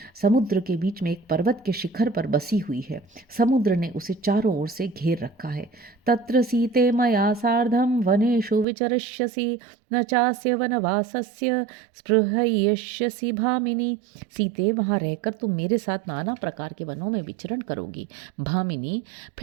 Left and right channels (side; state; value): left; drops out; at 8.7 s